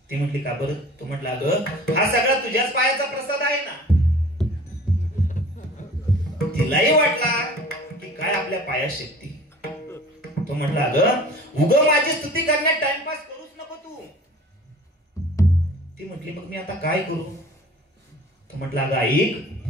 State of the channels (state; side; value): normal; both; correlation 0.45